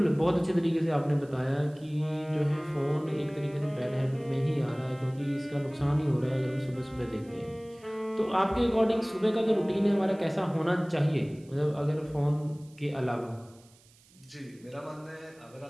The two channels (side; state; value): right; noise; hiss, 28 dB below the sound